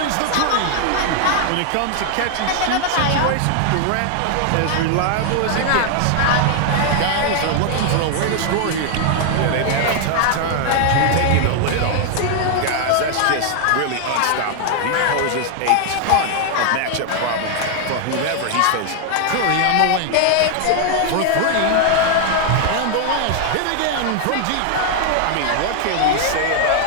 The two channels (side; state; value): both; different; correlation 0.00